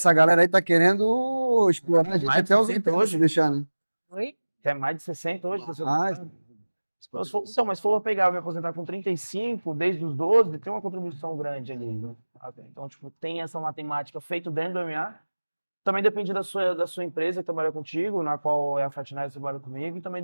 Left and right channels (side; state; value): both; inverted; correlation -1.00